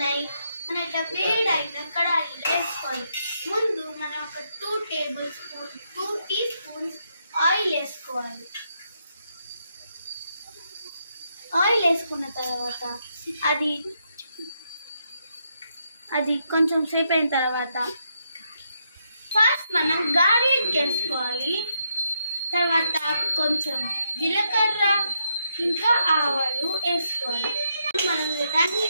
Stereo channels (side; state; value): both; inverted; correlation -0.79